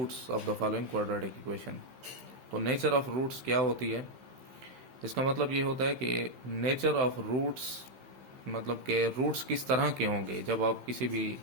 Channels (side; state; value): left; late; 15 ms